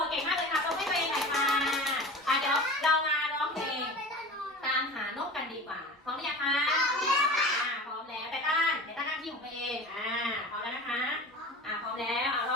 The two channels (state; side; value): normal; both; correlation 0.35